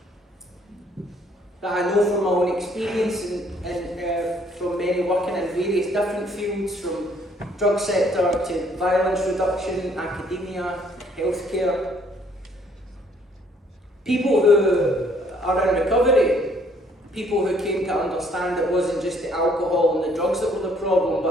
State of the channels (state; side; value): normal; both; correlation 0.63